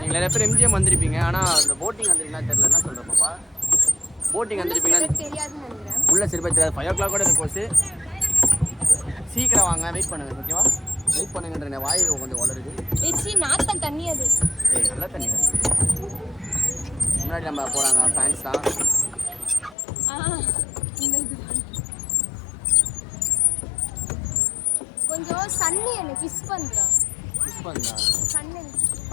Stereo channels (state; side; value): drops out; right; at 19.8 s